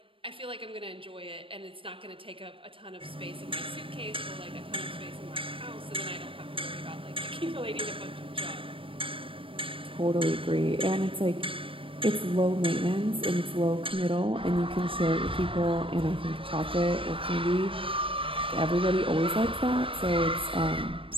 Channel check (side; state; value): left; late; 0.25 ms